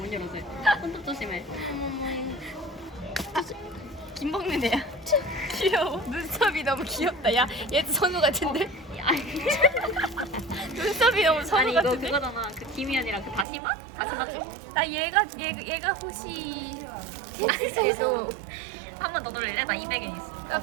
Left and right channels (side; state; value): left; drops out; at 13.5 s